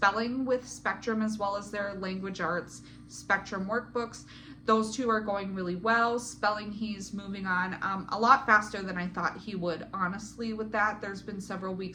with Spectrum, as well as their language arts Spectrum workbooks. Those 2 are going really well. Spelling, he's moving on a lot faster than I thought he would, honestly, with that. There's been several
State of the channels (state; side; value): identical; both; correlation 1.00